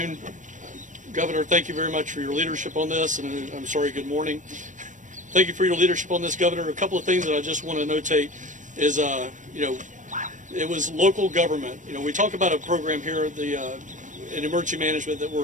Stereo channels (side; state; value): left; late; 0.37 ms